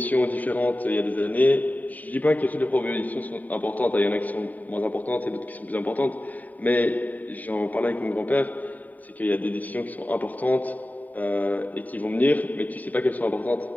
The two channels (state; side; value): late; right; 0.077 ms